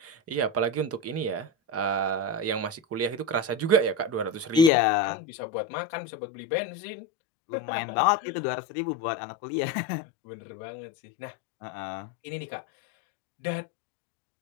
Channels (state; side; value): drops out; right; at 4.7 s